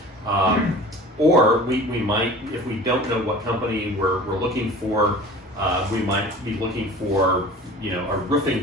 Or we might, if we don't know what company we're looking for, we might be looking for a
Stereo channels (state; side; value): normal; both; correlation 0.42